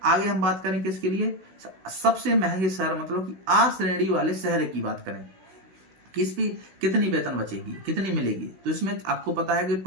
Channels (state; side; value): late; left; 16 ms